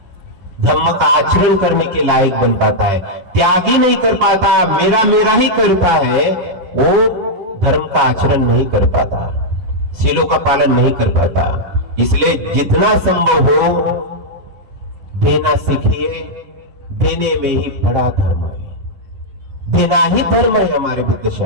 धम्म का आचरण करने के लायक बन पाता है। त्यागी नहीं कर पाता, मेरा मेरा ही करता है, वो धर्म का आचरण नहीं कर पाता, शीलों का पालन नहीं कर पाता। इसलिए जितना संभव हो देना सीखिए, देने में ही बड़ा धर्म है, देना ही धर्म है हमारे बुद्ध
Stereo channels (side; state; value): left; late; 11 ms